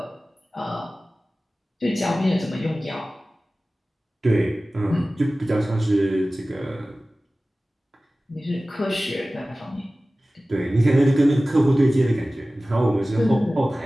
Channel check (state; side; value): normal; both; correlation 0.97